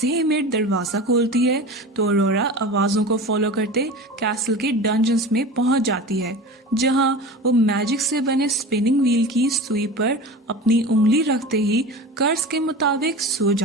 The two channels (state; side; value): normal; both; correlation 0.33